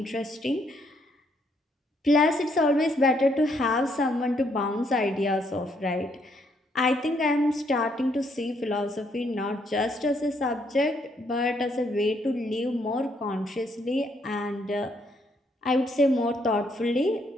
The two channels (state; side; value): normal; both; correlation 0.72